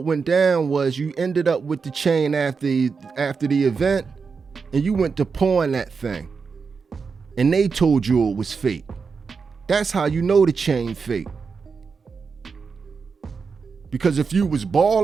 went down was you ended up with the chain after the event and you went to pawn that thing. And they told you it was fake. That's how you know the chain fake. Because if you was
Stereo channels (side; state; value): left; quieter; 5.2 dB